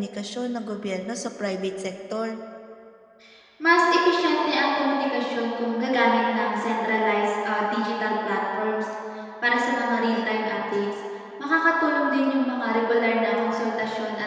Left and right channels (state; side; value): identical; both; correlation 1.00